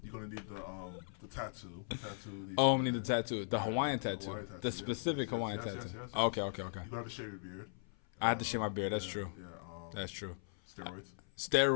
You're gonna need the tattoo. I'm gonna need the tattoo. The Hawaiian tattoo. The specific Hawaiian tattoo. Yes. Okay. You gotta have to shave your beard. I have to shave my beard. That's true. Yeah. That's true. Steroids.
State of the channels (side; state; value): right; silent; 52 dB below the other